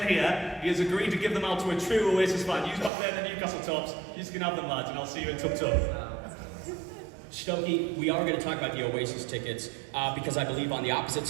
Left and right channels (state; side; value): drops out; left; at 2.9 s